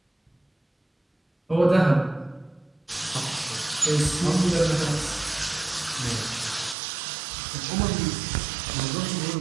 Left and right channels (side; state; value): left; drops out; at 6.8 s